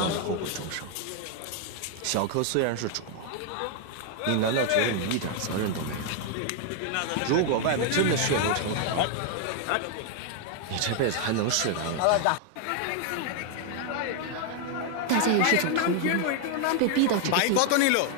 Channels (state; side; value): different; both; correlation 0.00